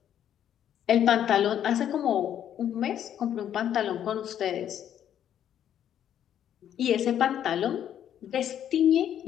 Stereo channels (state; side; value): quieter; right; 10.1 dB